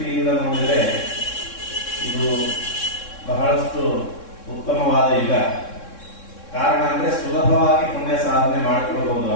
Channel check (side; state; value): right; late; 3.6 ms